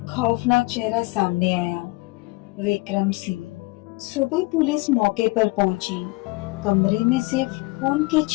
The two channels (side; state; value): right; quieter; 24.0 dB